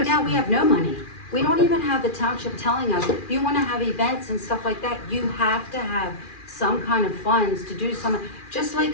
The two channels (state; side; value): late; right; 2.4 ms